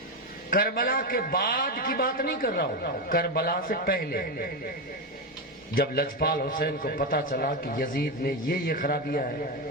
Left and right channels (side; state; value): both; normal; correlation 0.12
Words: کربلا کے بعد کی بات نہیں کر رہا ہوں، کربلا سے پہلے جب لجپال حسین کو پتا چلا کہ یزید میں یہ خرابیاں ہیں